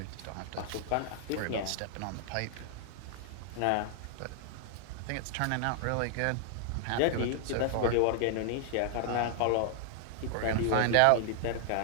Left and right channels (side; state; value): both; different; correlation -0.01